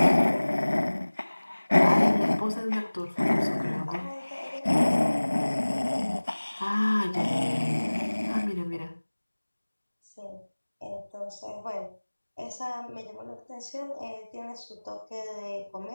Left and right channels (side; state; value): both; inverted; correlation -1.00